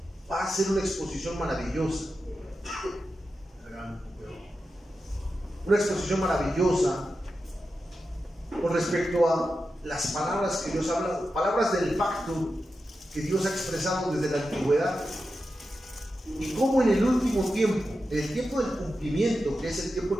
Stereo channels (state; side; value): normal; both; correlation 0.90